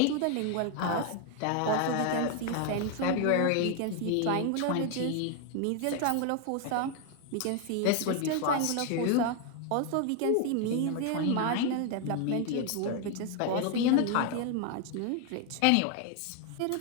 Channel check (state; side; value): different; both; correlation 0.00